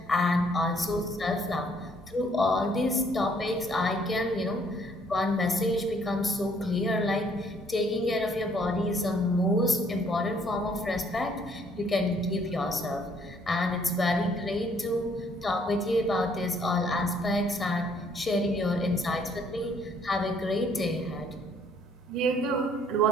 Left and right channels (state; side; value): normal; both; correlation 0.64